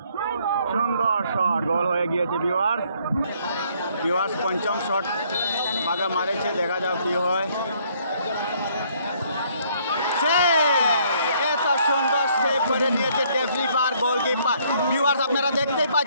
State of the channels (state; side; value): inverted; both; correlation -0.65